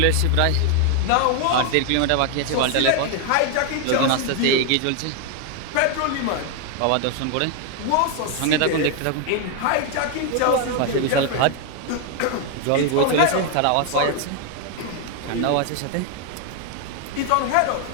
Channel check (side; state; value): both; different; correlation 0.00